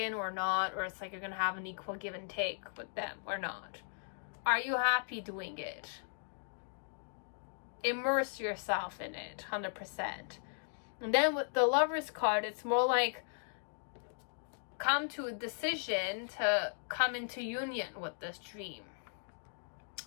or not, or it's like you're going to have an equal give and take with them or not. Are you happy doing it? Immerse yourself in it 100%. And then with the Lover's card, it's more like come to a decision to come into union with this dream.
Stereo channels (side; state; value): right; silent; digital silence